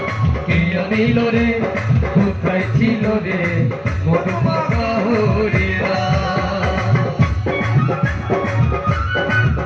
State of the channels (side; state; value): both; identical; correlation 1.00